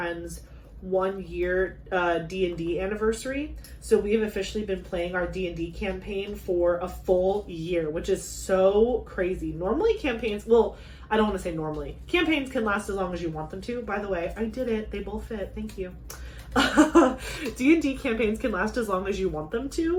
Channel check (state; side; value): identical; both; correlation 1.00